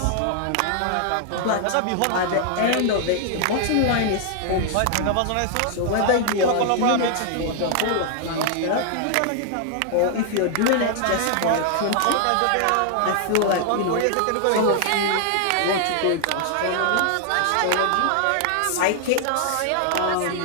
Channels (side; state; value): both; different; correlation -0.01